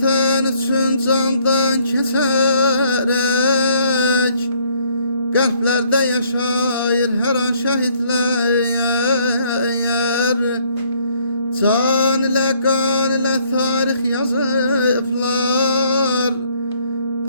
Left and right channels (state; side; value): inverted; both; correlation -0.65